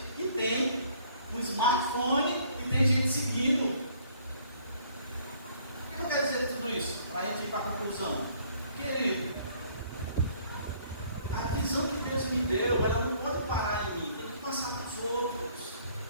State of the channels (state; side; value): inverted; both; correlation -0.61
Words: e tem um smartphone e tem gente seguindo. O que eu quero dizer de tudo isso? Para a gente ir para a conclusão. Querido, a visão que Deus me deu, ela não pode parar em mim, tem que passar para os outros.